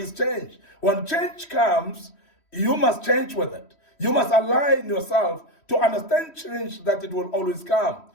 change. When change comes, you must change with it. You must align yourself to understand change, that it will always come.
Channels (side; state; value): right; late; 3.1 ms